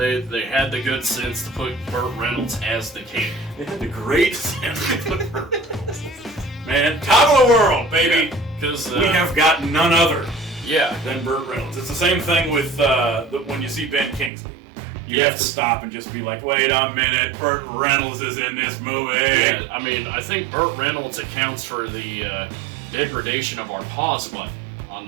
had the good sense to put Burt Reynolds as the king. They had the great sense to put Burt Reynolds. Man, top of the world, baby. Because We have got none other yeah. than Burt Reynolds. It's the same thing with when you see Ben Kingsley. You have to stop and just be like, wait a minute, Burt Reynolds is in this movie. Yeah, I mean, I think Burt Reynolds accounts for the degradation of our pause button on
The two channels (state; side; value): drops out; left; at 14.3 s